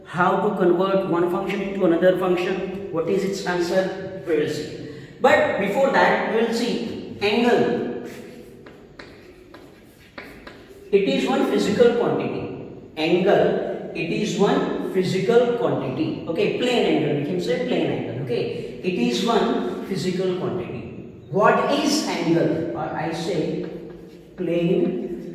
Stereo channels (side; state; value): both; identical; correlation 1.00